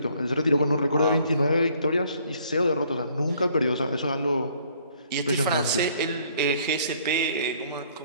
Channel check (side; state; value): both; inverted; correlation -0.62